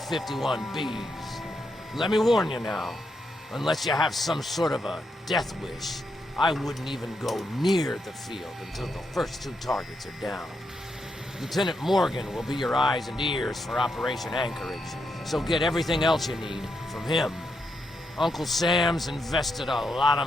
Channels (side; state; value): both; normal; correlation 0.82